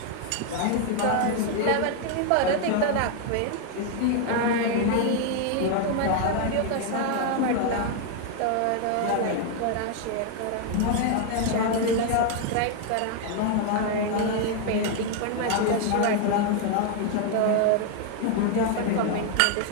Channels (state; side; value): different; both; correlation 0.01